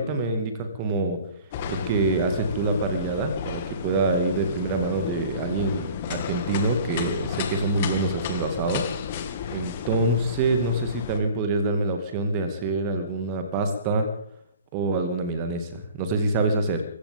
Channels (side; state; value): both; inverted; correlation -0.44